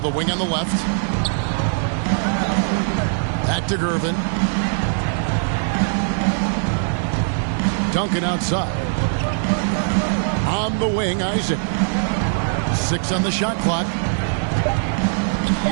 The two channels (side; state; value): left; silent; digital silence